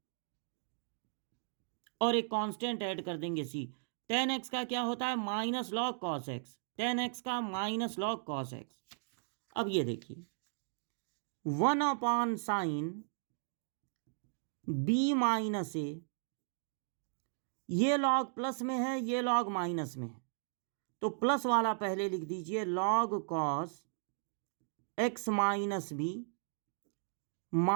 और एक कांस्टेंट ऐड कर देंगे सी। 10x का क्या होता है minus log cos x, 10x का माइनस लॉग कॉस एक्स। अब ये देखिए 1 साइन बी माइनस ए, ये लॉग प्लस में है ये लॉग माइनस में है, तो प्लस वाला पहले लिख दीजिए log cos x minus B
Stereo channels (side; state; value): left; silent; digital silence